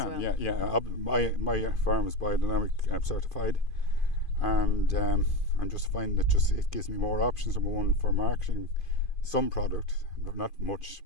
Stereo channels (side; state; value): right; late; 2.5 ms